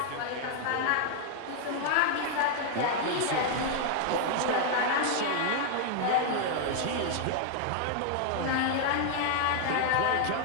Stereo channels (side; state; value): both; different; correlation 0.00